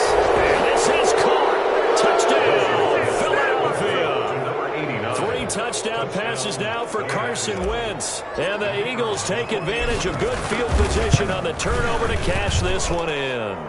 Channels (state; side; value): identical; both; correlation 1.00